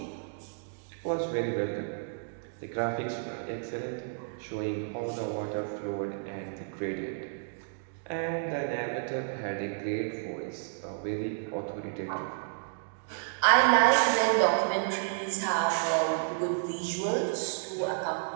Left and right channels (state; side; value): silent; left; digital silence